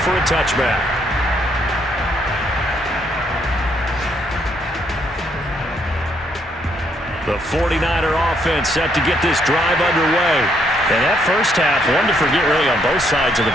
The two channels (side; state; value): both; normal; correlation 0.72